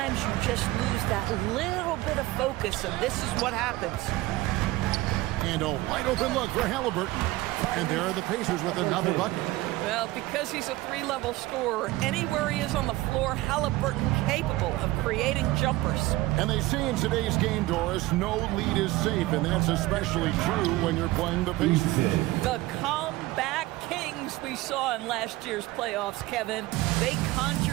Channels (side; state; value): left; quieter; 18.7 dB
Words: you just lose that little bit of focus, and this is what happens. And a wide open look for Halliburton. And there are the Pacers with another bucket. Well, because he's a 3-level scorer, anywhere he is on the floor, Halliburton capable of creating jumpers. And they say in today's game, Doris, no lead is safe, and that's especially true when you're playing the Pacers. The comeback kings we saw in last year's playoffs, Kevin. They